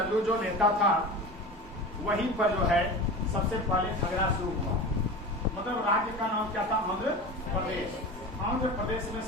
जो नेता था वहीं पर जो है सबसे पहले झगड़ा शुरू हुआ। मतलब राज्य का नाम क्या था? आंध्र प्रदेश। आंध्र प्रदेश में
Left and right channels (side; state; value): both; normal; correlation 0.31